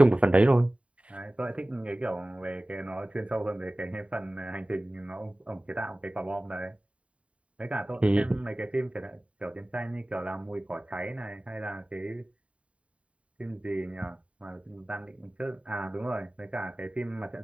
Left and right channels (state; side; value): late; left; 0.064 ms